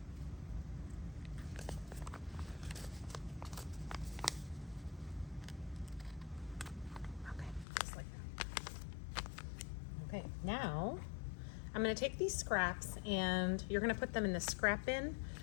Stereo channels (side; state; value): right; drops out; at 7.7 s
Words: Okay, just like that. Okay, now I'm going to take these scraps and you're going to put them in the scrap bin